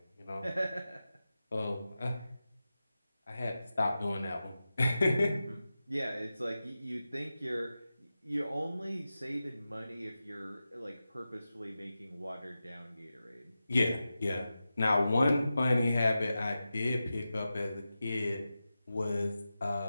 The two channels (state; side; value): inverted; both; correlation -0.93